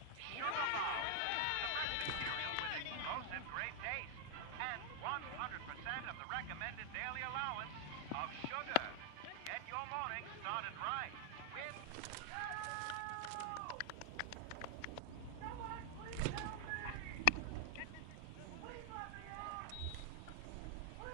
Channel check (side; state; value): both; different; correlation 0.00